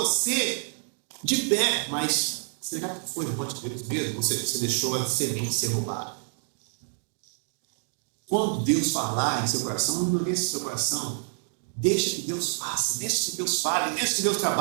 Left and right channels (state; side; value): silent; left; digital silence